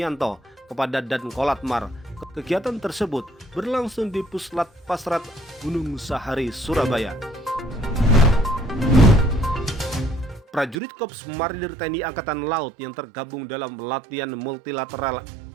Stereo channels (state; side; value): drops out; left; at 10.8 s